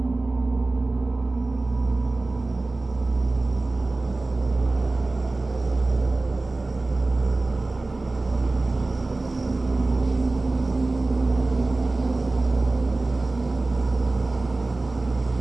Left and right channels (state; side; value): quieter; left; 3.2 dB